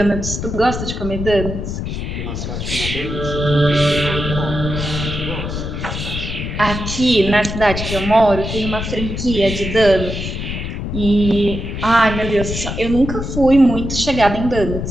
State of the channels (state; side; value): noise; left; rumble, 5 dB below the sound